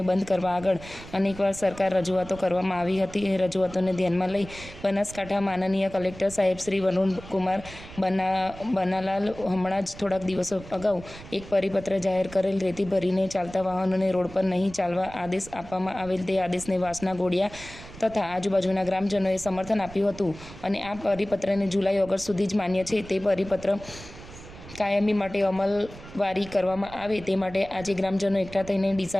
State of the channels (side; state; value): right; noise; rumble, 16 dB below the sound